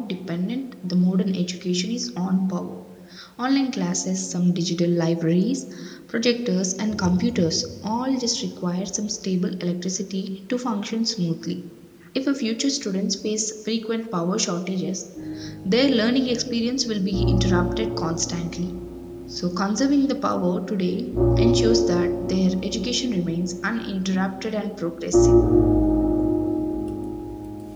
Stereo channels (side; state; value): both; identical; correlation 1.00